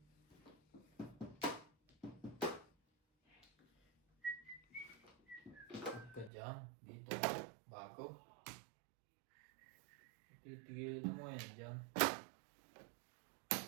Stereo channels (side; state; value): left; drops out; at 6.3 s